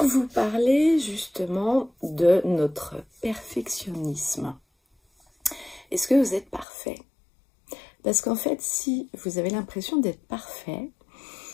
vous parler justement de notre perfectionnisme. Est-ce que vous êtes parfait? Parce qu'en fait, si vous avez l'impression d'être parfait,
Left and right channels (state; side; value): drops out; right; at 6.7 s